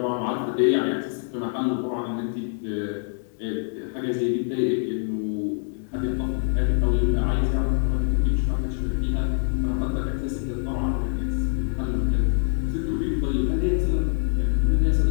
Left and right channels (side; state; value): right; silent; digital silence